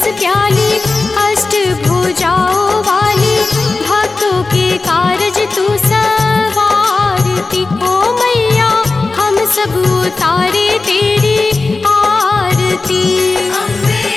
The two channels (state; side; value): quieter; right; 3.7 dB